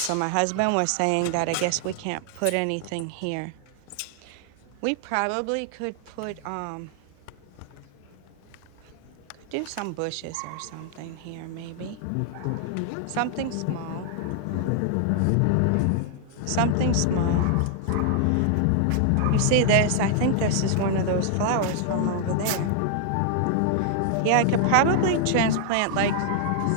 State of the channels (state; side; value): different; both; correlation 0.00